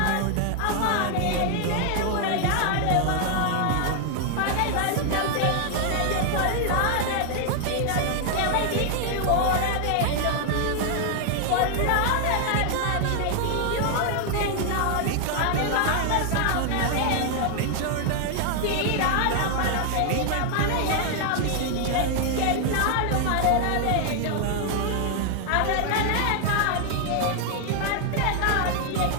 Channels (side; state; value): both; different; correlation 0.00